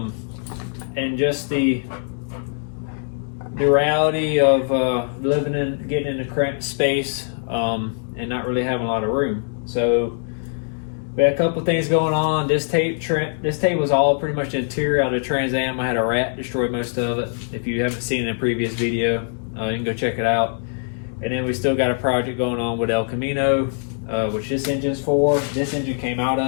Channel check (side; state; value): right; silent; 63 dB below the other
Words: just the reality of getting in a cramped space and not really having a lot of room. So we had a couple things going on. This tape was all pretty much the interior out of the Trans Am. I had a rat destroy most of it. If you haven't seen it in a previous video, you can go check it out. And then we still got a project going on with El Camino, which this engine's for. This engine came out